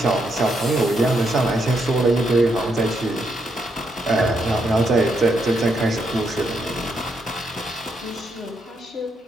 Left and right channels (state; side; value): normal; both; correlation 0.79